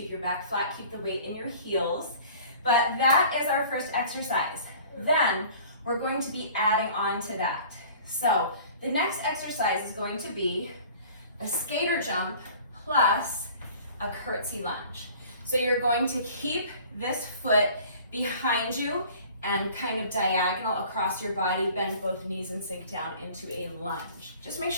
your back flat, keep the weight in your heels. But that is our first exercise. Then we're going to be adding on to that. So the next exercise is going to be a skater jump plus a curtsey lunge. So you're going to keep this foot behind you and kind of diagonal across your body, bend both knees and sink down into a lunge. Just make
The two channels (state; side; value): inverted; both; correlation -0.47